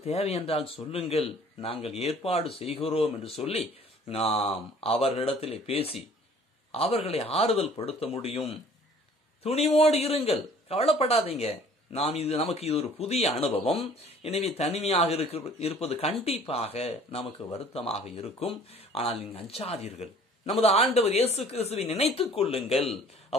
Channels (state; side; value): normal; both; correlation 0.52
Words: தேவை என்றால் சொல்லுங்கள், நாங்கள் ஏற்பாடு செய்கிறோம் என்று சொல்லி நாம் அவர்களிடத்திலே பேசி அவர்களை ஆறுதல் படுத்த முடியும். துணிவோடு இருங்கள், கவலைப்படாதீங்க. நமக்கு இது ஒரு புதிய அனுபவம். எனவே தனிமையாக இருப்பது கண்டிப்பாக நமக்கு வருத்தமாக இருக்கும். ஆனால் நீங்கள் அஞ்சாதீர்கள். நமது ஆண்டவர் இயேசு கிறிஸ்துவை நினைத்துக் கொள்ளுங்கள்.